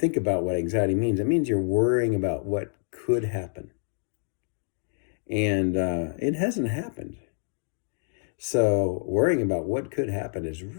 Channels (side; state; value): right; silent; digital silence